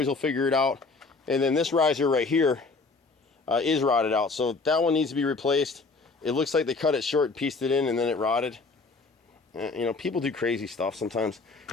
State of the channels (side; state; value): right; quieter; 4.0 dB